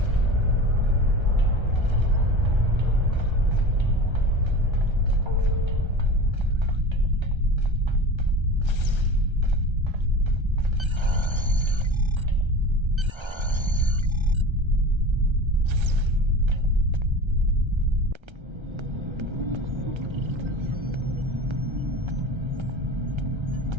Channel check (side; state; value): left; late; 1.3 ms